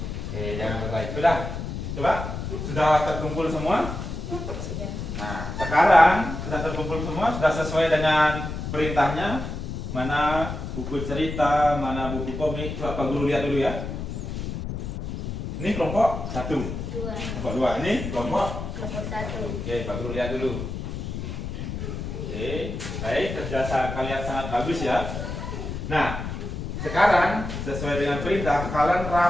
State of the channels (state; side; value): noise; left; rumble, 5 dB below the sound